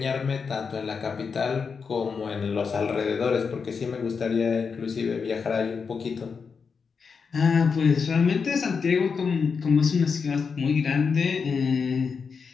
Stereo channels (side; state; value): right; quieter; 5.6 dB